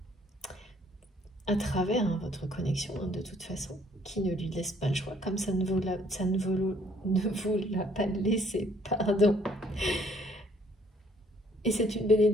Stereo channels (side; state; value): both; normal; correlation 0.63